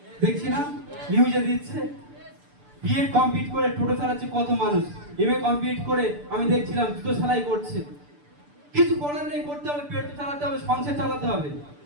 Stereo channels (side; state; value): left; late; 6.8 ms